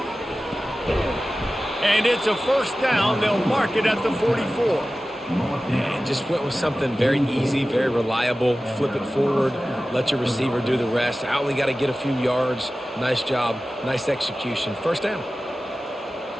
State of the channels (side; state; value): both; normal; correlation 0.95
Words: And it's a 1st down. They'll mark it at the 44. And just went with something very easy, very reliable. Flip it forward, let your receiver do the rest. I only got to get a few yards. Nice job, nice execution. 1st down.